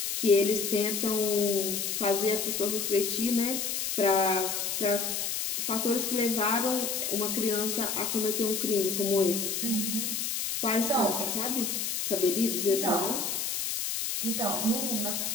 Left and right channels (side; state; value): left; noise; hiss, 1 dB below the sound